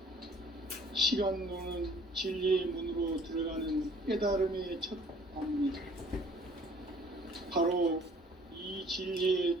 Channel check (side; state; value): both; normal; correlation 0.55